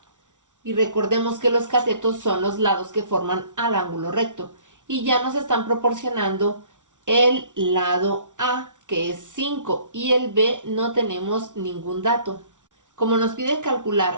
Y recordemos que los catetos son los lados que forman al ángulo recto. Y ya nos están proporcionando el lado A, que es 5, y el B no tenemos ningún dato. Como nos pide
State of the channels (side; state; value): left; late; 0.87 ms